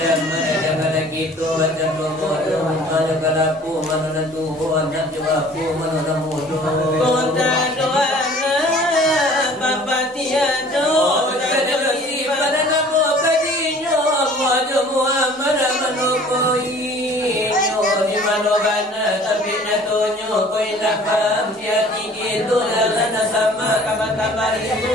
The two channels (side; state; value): both; normal; correlation 0.50